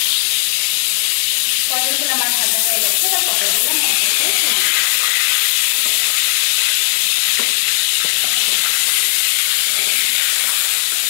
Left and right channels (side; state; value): right; silent; 66 dB below the other